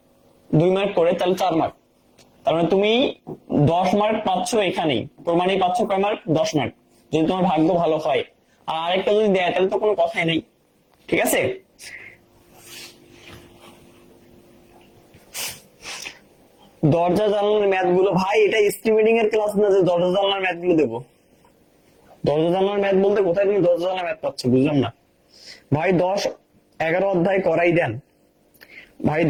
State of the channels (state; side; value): identical; both; correlation 1.00